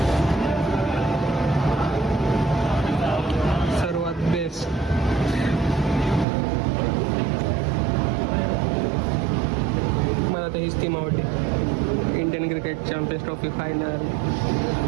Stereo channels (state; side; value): drops out; left; at 6.2 s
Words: सर्वात बेस्ट मला तर हीच टीम आवडली. Indian cricket champions trophy final